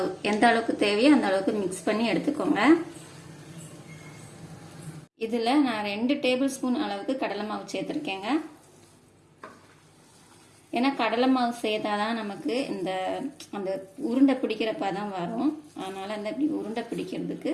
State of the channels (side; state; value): both; identical; correlation 1.00